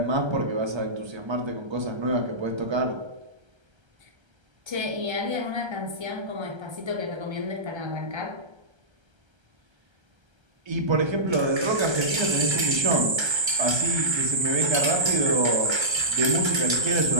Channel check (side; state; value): left; late; 1.3 ms